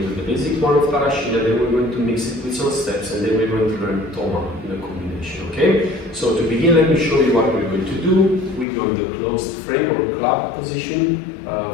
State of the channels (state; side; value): drops out; right; at 8.7 s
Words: to do the basic one of Tarraxinha, then we're going to mix it with some steps, and then we're going to learn Toma in a combination, okay? So to begin, let me show you what we're going to do. We go in the closed frame or club position